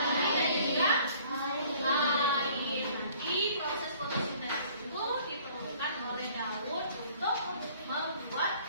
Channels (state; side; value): inverted; both; correlation -0.55